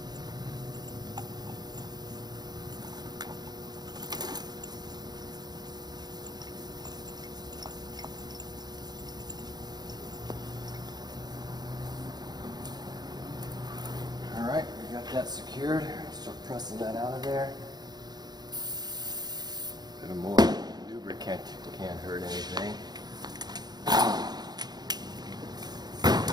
Alright, we got that secured. Start pressing that out of there. A bit more lubricant can't hurt anything.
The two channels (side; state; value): left; late; 0.20 ms